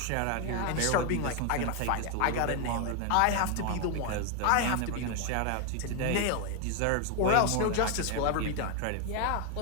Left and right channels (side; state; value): both; different; correlation 0.01